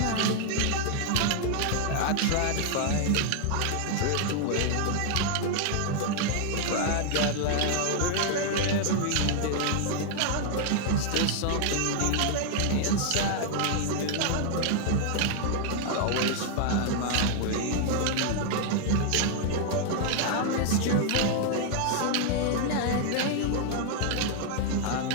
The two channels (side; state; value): both; different; correlation 0.00